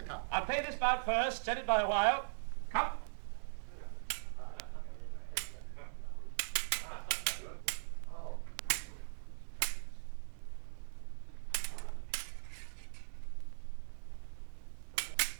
cup. I'll pay this bout first, set it by a while. Come.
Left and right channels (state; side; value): silent; left; 51 dB below the other